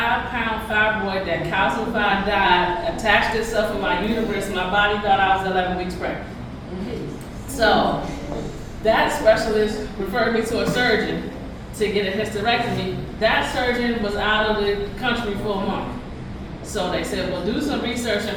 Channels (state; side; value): identical; both; correlation 1.00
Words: fibroid that calcified, died, attached itself in my uterus. My body thought I was 11 weeks pregnant. So that specialist referred me to a surgeon to get a hysterectomy. That surgeon was out of the country for a month. So they said, well, do some research and